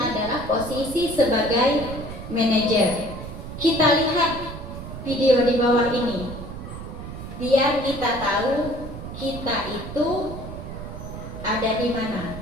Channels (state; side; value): noise; right; rumble, 10 dB below the sound